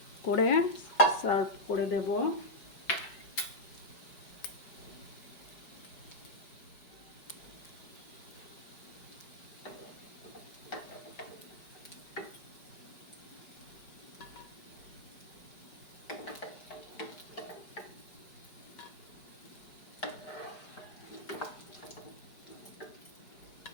করে সার্ভ করে দেব।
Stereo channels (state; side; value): late; right; 5.1 ms